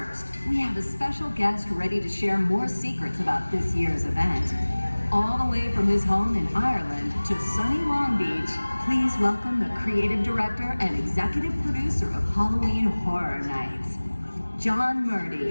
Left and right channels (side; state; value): both; inverted; correlation -1.00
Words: we have a special guest ready to share more secrets about this year's event. All the way from his home in Ireland to sunny Long Beach, please welcome the creative director and executive producer of Halloween Horror Nights, John